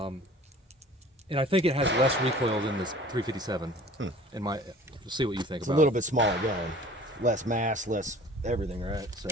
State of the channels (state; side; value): normal; both; correlation 0.47